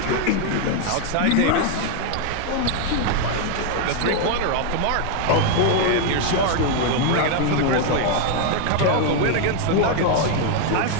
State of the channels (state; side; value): different; both; correlation 0.01